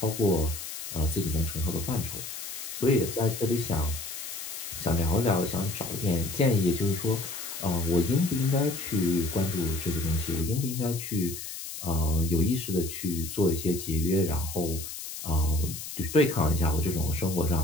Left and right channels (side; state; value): left; noise; hiss, 9 dB below the sound